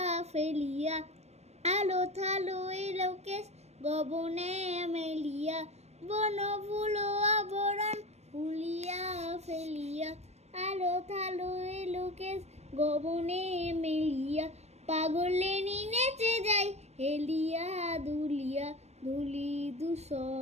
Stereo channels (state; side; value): late; left; 0.31 ms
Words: ফেলিয়া আলো থালো এলোকেশ গবনে মেলিয়া বন ফুল আবরণ ফুলিয়া ফেলিয়া আলো থালো এলোকেশ গবনে মেলিয়া পাগলেনি নেচে যাই হেলিয়া দুলিয়া ধুলি